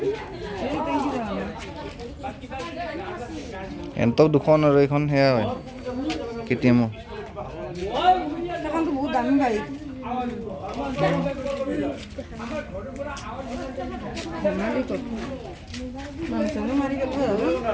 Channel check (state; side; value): identical; both; correlation 1.00